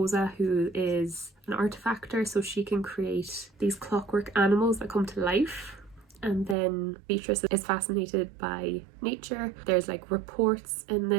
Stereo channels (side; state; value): left; drops out; at 6.6 s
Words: who is an artifactor, so she can create these clockwork animals that come to life. And then Beatrice is fascinated by nature. There's like reports in